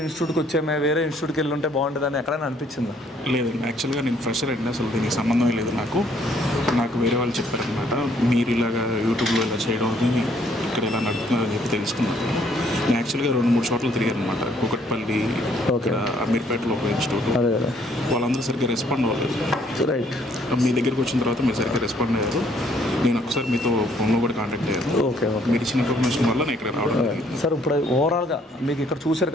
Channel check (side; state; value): both; normal; correlation 0.65